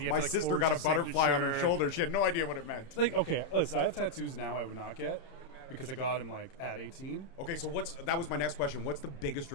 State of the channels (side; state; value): right; late; 31 ms